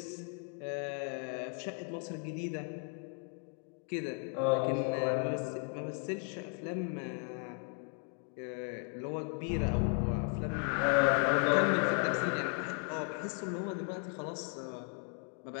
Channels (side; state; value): right; quieter; 37.7 dB